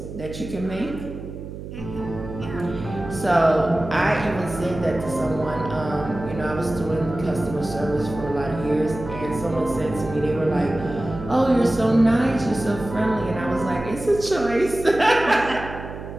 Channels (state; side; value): noise; right; hum, 10 dB below the sound